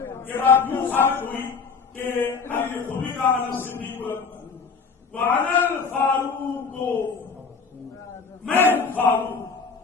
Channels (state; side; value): quieter; right; 5.1 dB